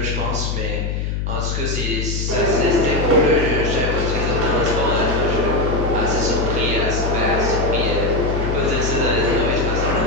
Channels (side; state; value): left; noise; hum, 2 dB below the sound